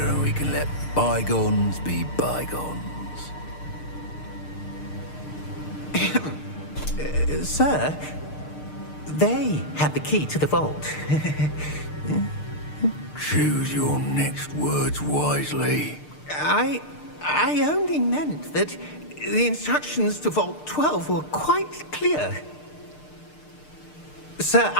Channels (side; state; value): right; late; 6.6 ms